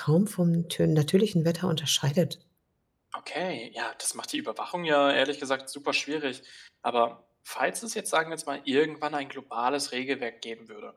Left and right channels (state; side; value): identical; both; correlation 1.00